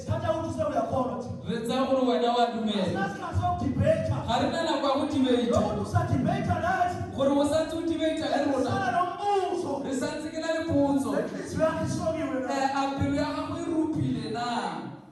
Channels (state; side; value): identical; both; correlation 1.00